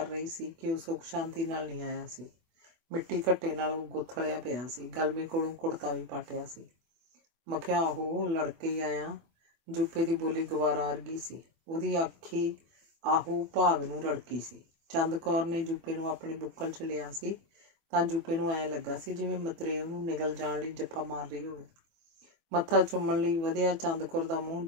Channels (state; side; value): late; left; 24 ms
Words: ਰਹੀ ਸੀ ਕਿ ਉਹ ਸੁੱਖ ਸ਼ਾਂਤੀ ਨਾਲ ਨਹੀਂ ਆਇਆ ਸੀ। ਮਿੱਟੀ ਘੱਟੇ ਨਾਲ ਉਹ ਗੁੱਥਲਿਆ ਪਿਆ ਸੀ। ਗਲਮੇ ਕੋਲੋਂ ਕੁੜਤਾ ਵੀ ਪਾਟਿਆ ਸੀ। ਮਖਿਆ ਆਹੋ ਲੜਕੇ ਹੀ ਆਇਆ। ਜੂਪੇ ਦੀ ਬੋਲੀ ਗਵਾਰਾ ਵਰਗੀ ਸੀ। ਉਹਦੀ ਆਖੀ ਆਹੋ ਭਾਗ ਨੂੰ ਰੜਕੀ ਸੀ। ਚੰਦ ਕੌਰ ਨੇ ਜੂਪੇ ਨੂੰ ਆਪਣੀ ਬੁੱਕਲ 'ਚ ਲਿਆ ਸੀ ਤਾਂ ਜੂਪੇ ਨੂੰ ਐਂ ਲੱਗਾ ਸੀ ਜਿਵੇਂ ਮਤਰੇ ਉਹਨੂੰ ਨਿਗਲ ਜਾਣ ਲਈ ਜੱਫਾ ਮਾਰ ਰਹੀ ਹੋਵੇ। ਮੱਥਾ ਚੁੰਮਣ ਲਈ ਵਧਿਆ ਚੰਦ ਕੌਰ ਦਾ ਮੂੰਹ